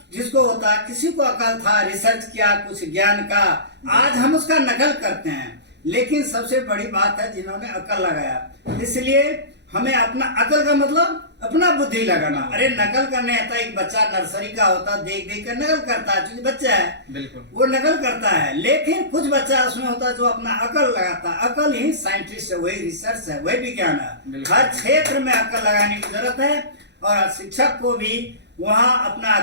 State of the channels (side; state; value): left; late; 0.50 ms